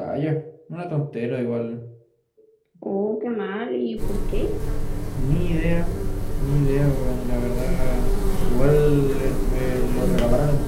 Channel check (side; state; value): both; identical; correlation 1.00